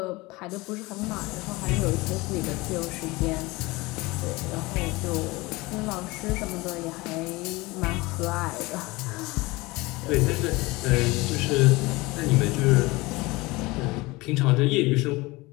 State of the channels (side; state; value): right; quieter; 22.4 dB